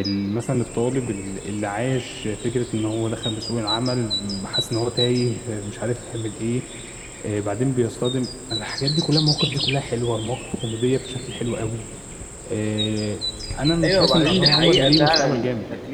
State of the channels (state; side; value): identical; both; correlation 1.00